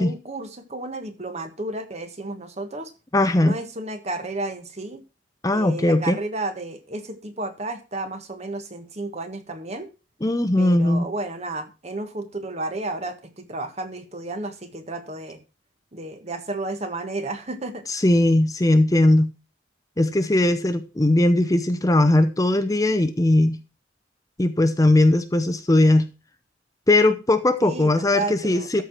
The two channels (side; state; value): both; normal; correlation 0.80